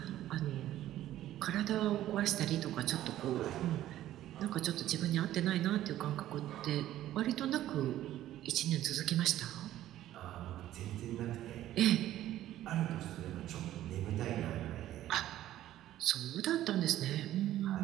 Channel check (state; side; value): quieter; left; 13.4 dB